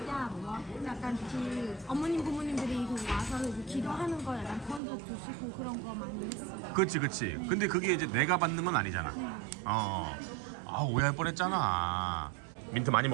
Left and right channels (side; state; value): left; drops out; at 4.8 s